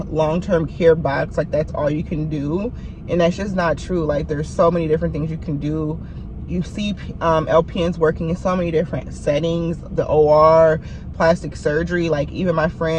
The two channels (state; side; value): identical; both; correlation 1.00